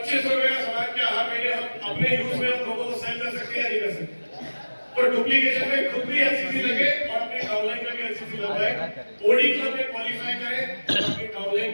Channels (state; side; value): inverted; both; correlation -1.00